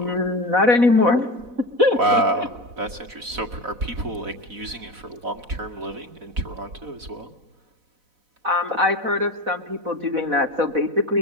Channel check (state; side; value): late; left; 4.0 ms